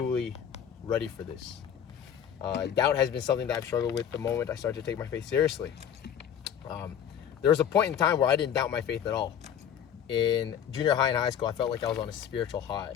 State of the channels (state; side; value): quieter; right; 9.0 dB